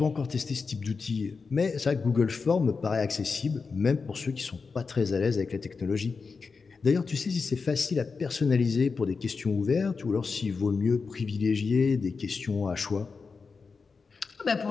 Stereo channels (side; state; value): right; quieter; 4.8 dB